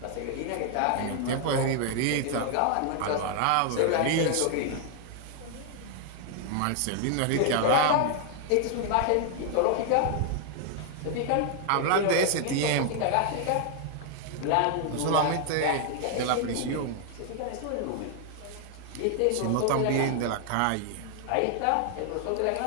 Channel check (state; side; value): different; both; correlation 0.00